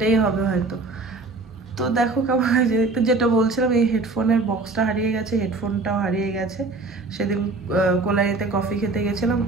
হবে হয়তো। তো দেখো কেমন হয়েছে দেখতে, যেটা বলছিলাম, এই হেডফোনের বক্সটা হারিয়ে গেছে, হেডফোনটাও হারিয়ে গেছে, সেদিন কোলাইতে কফি খেতে গেছিলাম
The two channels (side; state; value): left; quieter; 3.5 dB